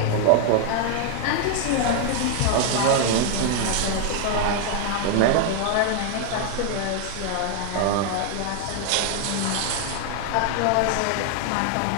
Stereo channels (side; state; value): both; different; correlation 0.00